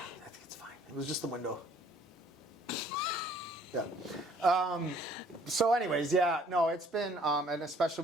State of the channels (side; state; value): both; normal; correlation 0.58